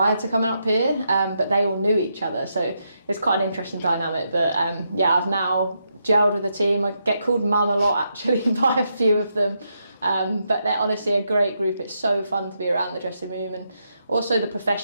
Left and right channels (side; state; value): both; inverted; correlation -0.81